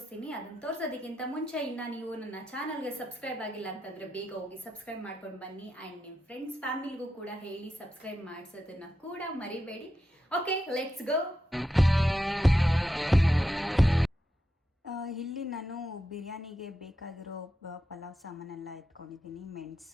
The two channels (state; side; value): normal; both; correlation 0.86